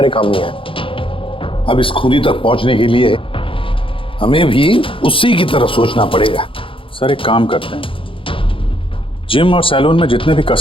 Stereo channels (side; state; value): right; late; 0.25 ms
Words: काम नहीं आया। अब इस खूनी तक पहुंचने के लिए हमें भी उसी की तरह सोचना पड़ेगा। सर एक काम करते हैं, जिम और सैलून में जितने भी